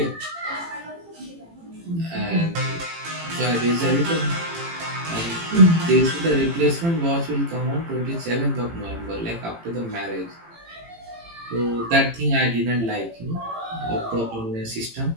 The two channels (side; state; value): left; late; 18 ms